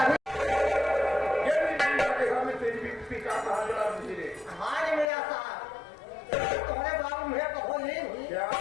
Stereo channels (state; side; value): drops out; right; at 5.1 s